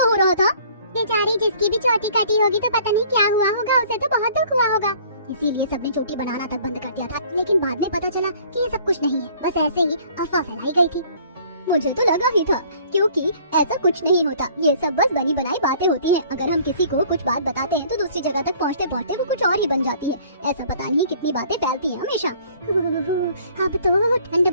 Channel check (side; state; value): both; inverted; correlation -0.55